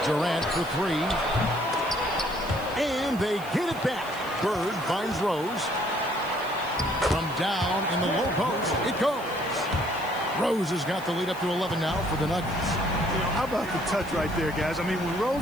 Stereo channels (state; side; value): noise; left; hiss, 19 dB below the sound